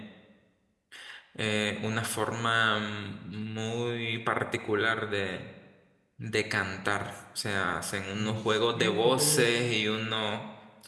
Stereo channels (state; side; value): identical; both; correlation 1.00